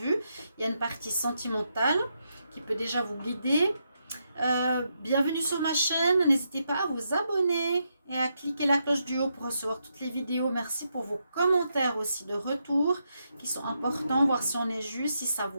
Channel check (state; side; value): inverted; both; correlation -0.82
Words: Il y a une partie sentimentale qui peut déjà vous guider. Bienvenue sur ma chaîne, n'hésitez pas à vous abonner et à cliquer la cloche du haut pour recevoir toutes les vidéos. Merci pour vos commentaires aussi de retour qui sont importants, voir si on est juste, si ça